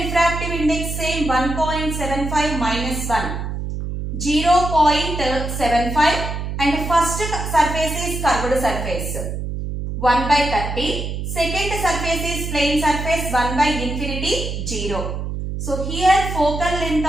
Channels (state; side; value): noise; right; hum, 4 dB below the sound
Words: refractive index same 1.75 minus 1. 0.75 and first surface is curved surface. 1 by 30. Second surface is plane surface 1 by infinity 0. So here focal length